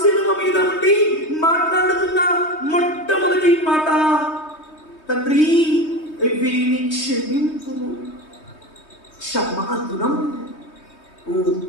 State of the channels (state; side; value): late; right; 3.2 ms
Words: శిలువ మీద ఉండి మాట్లాడుతున్న మొట్టమొదటి మాట, తండ్రి వీరిని క్షమింపుము. క్షమాగుణం ఓ